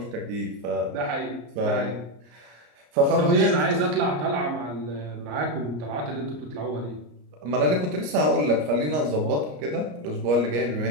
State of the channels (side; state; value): left; late; 34 ms